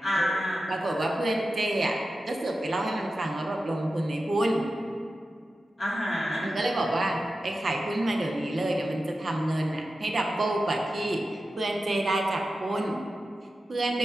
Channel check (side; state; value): both; normal; correlation 0.92